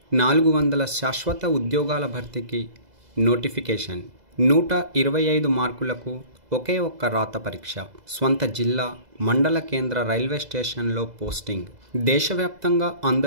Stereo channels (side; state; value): left; late; 2.0 ms